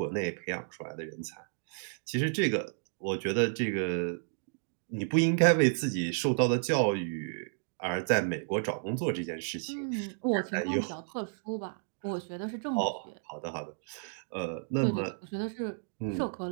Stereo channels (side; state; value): left; silent; digital silence